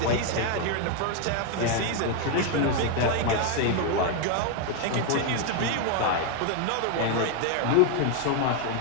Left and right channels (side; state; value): both; different; correlation 0.01